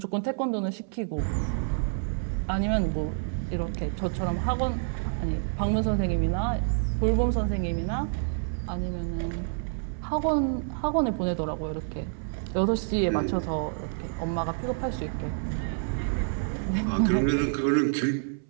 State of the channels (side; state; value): left; silent; 59 dB below the other